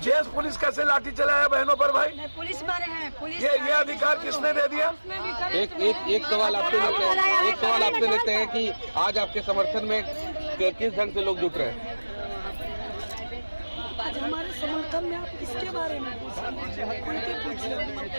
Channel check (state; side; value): inverted; both; correlation -1.00